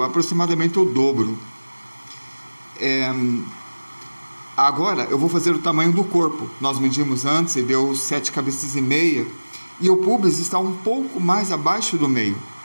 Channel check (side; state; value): both; inverted; correlation -1.00